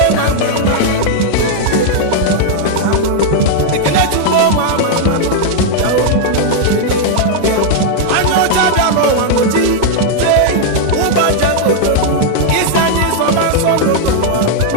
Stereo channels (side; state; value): both; different; correlation 0.00